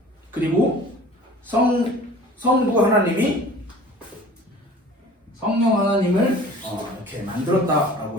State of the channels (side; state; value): both; normal; correlation 0.45